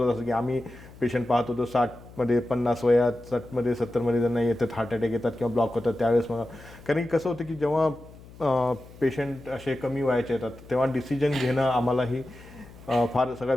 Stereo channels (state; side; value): noise; left; hum, 20 dB below the sound